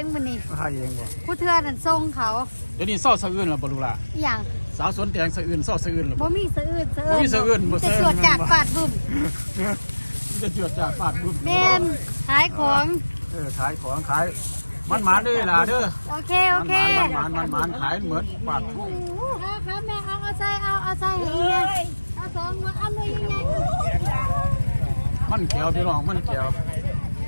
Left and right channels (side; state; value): both; inverted; correlation -1.00